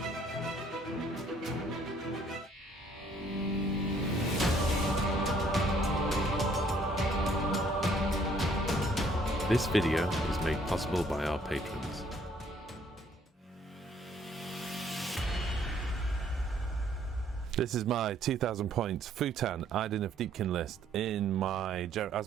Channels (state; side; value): normal; both; correlation 0.63